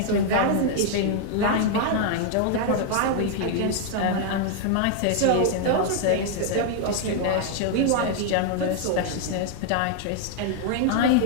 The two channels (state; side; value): different; both; correlation 0.00